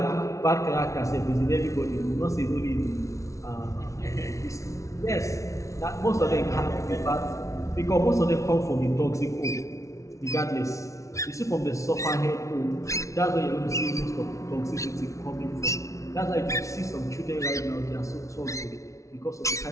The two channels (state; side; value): late; right; 0.15 ms